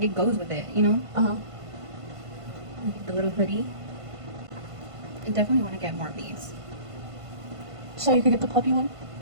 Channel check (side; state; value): left; late; 1.5 ms